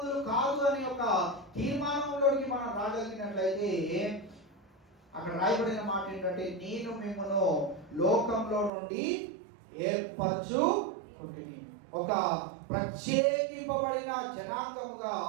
కాదు అనే ఒక తీర్మానంలోకి మనం రాగలిగినట్లయితే అక్కడ రాయబడిన మాట ఏంటంటే నేను మిమ్మల్ని లోకంలో నుండి ఏర్పరచుకుంటుని. ఒక ప్రత్యేకింపబడిన జనాంగముగా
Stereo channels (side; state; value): left; drops out; at 8.7 s